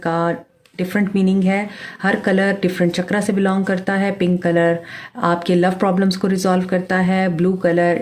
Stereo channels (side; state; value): both; identical; correlation 1.00